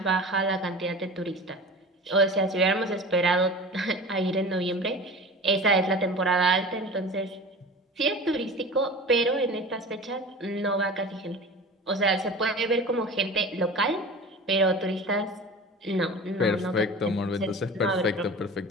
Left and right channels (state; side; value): normal; both; correlation 0.36